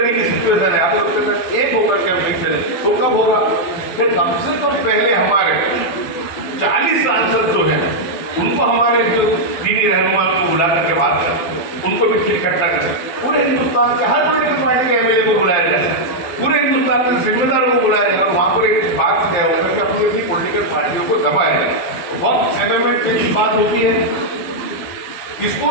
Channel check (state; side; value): late; right; 12 ms